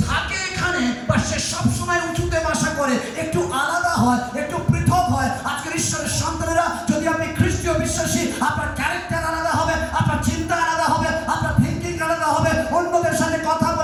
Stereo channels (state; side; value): identical; both; correlation 1.00